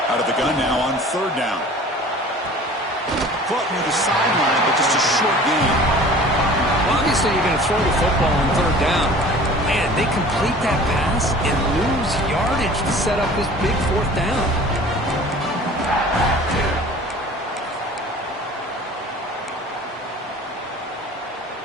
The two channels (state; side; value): normal; both; correlation 0.45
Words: Out of the gun now on 3rd down. Caught near the sideline, but just a short gain. Well, obviously, you're going to throw the football on 3rd down. Man, they complete that pass and lose yardage to set up this big 4th down.